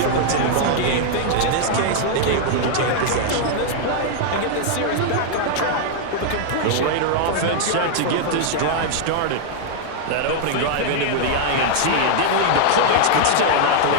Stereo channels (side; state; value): both; different; correlation 0.00